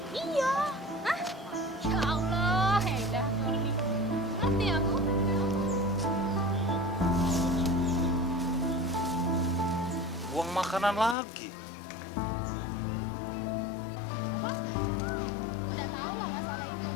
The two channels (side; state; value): right; drops out; at 11.2 s